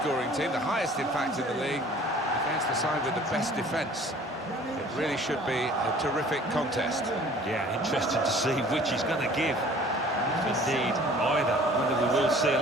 team, the highest in fact in the league, against the side with the best defence. It really should be a terrific contest. Yeah, interesting to see which he's going to give. If indeed either, whether we will see a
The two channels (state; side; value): normal; both; correlation 0.50